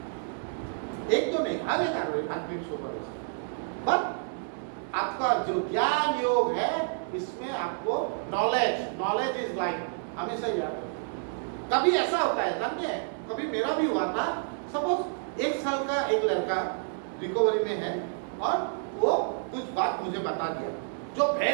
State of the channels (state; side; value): silent; left; digital silence